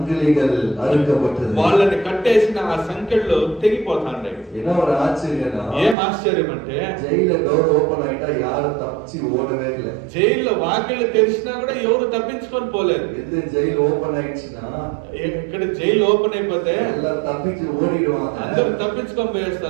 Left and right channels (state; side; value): drops out; left; at 6.0 s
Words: அறுக்கப்பட்டது. వాళ్ళని కట్టేసిన ఆ సంకెళ్ళు తెగిపోతాండే. என்ன ஒரு ஆச்சரியம்னா ఏం ఆశ్చర్యం అంటే జైల్లో డోర్ ఓపెన్ ஆயிட்டா யாரும் தப்பிச்சு ஓடவே இல்லை. జైల్లో వాకిళ్ళు తెరిచినా కూడా ఎవరు తప్పించుకొని పోలేదు. எந்த ஜெயில் ஓபன் ஆயிடுச்சுன்னா ఇక్కడ జైలు ఓపెన్ అయిపోతే எல்லாரும் தப்பிச்சு ஓடிடுவாங்க. అందరూ తప్పించుకొని